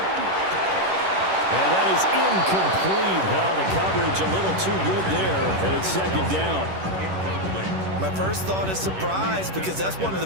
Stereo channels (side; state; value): left; late; 10 ms